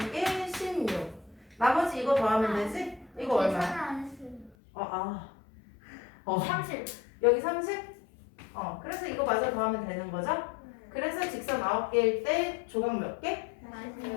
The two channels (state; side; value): drops out; right; at 4.5 s